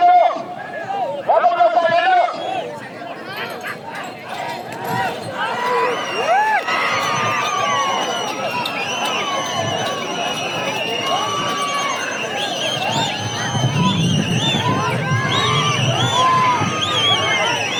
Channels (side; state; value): both; identical; correlation 1.00